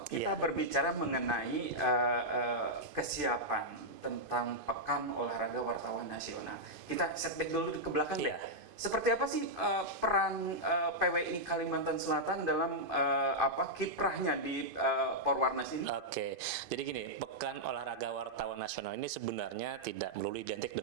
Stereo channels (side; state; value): left; late; 2.5 ms